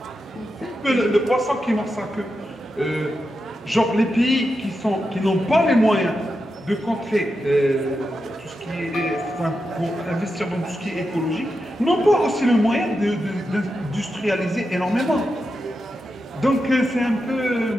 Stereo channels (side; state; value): both; normal; correlation 0.88